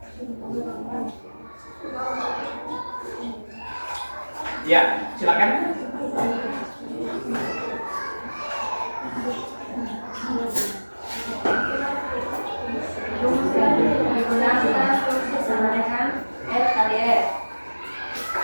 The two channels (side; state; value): both; inverted; correlation -1.00